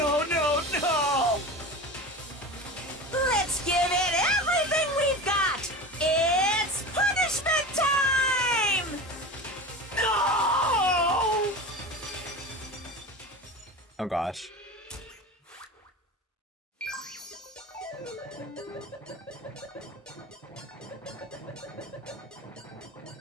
no, no! Let's give it everything we've got! It's punishment time! No! Oh gosh.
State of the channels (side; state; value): both; normal; correlation 0.30